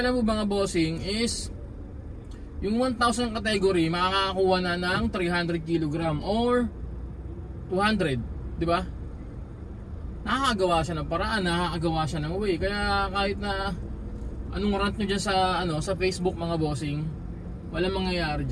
mga bossing is yung 1,000 category makakakuha na ng 300 kg or 200, di ba? Nakakagawa siya ng paraan, nakakagawa siya ng way. Kaya kahit na anong rant nyo dyan sa Facebook mga bossing, walang mangyayari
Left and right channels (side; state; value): both; identical; correlation 1.00